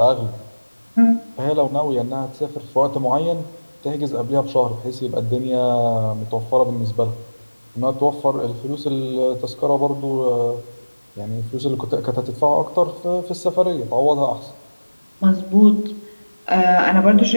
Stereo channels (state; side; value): inverted; both; correlation -1.00